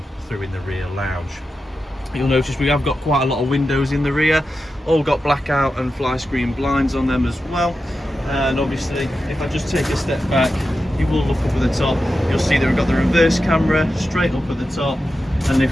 through in the rear lounge. You'll notice we have got quite a lot of windows in the rear, all got blackout and fly screen blinds on them as well. And obviously if I just take a step back, you will look up at the top, you'll see that we've got the reverse camera straight up at the top, and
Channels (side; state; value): both; normal; correlation 0.91